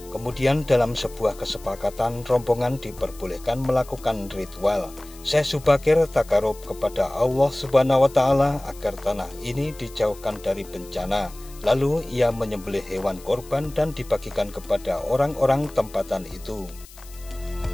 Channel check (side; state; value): left; noise; hiss, 21 dB below the sound